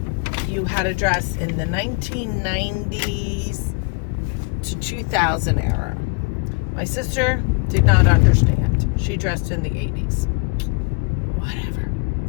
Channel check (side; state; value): right; quieter; 32.7 dB